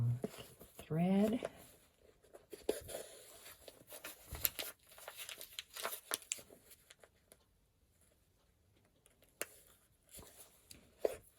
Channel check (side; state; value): both; identical; correlation 1.00